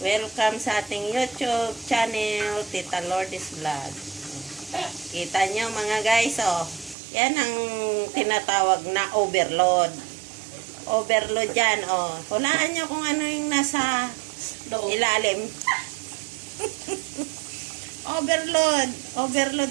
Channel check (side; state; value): left; drops out; at 7.0 s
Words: sa ating YouTube channel, Tita Lourdes Vlog. Kita nyo mga guys, oh. Yan ang tinatawag na overload. Overload yan, oh. Hulaan nyo kung ano yung nasa ilalim. Overload.